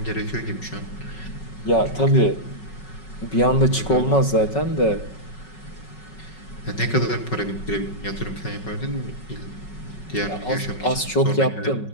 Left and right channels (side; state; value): right; late; 5.4 ms